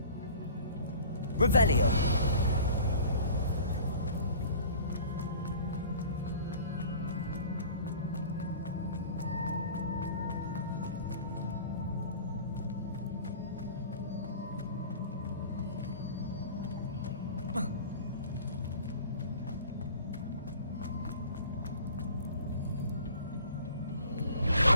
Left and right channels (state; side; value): inverted; both; correlation -0.44